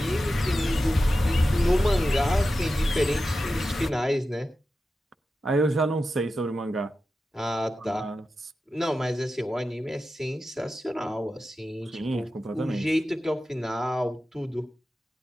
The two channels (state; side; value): normal; both; correlation 0.92